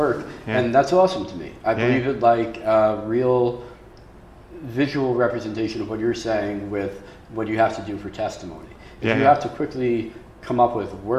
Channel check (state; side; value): identical; both; correlation 1.00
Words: Yeah. and that's awesome to me. I Yeah. believe it like a real visual representation of what you're saying with what you have to do for testimony. If Yeah, you yeah. have to quickly come up with